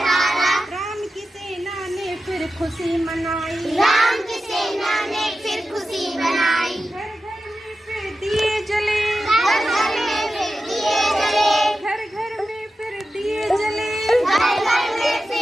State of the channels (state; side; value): normal; both; correlation 0.92